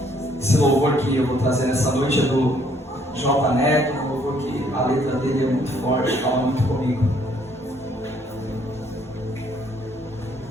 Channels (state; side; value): normal; both; correlation 0.65